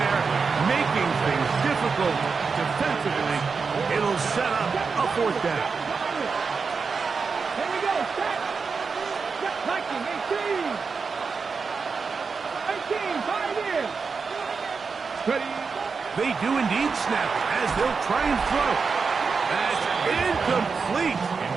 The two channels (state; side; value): quieter; left; 5.1 dB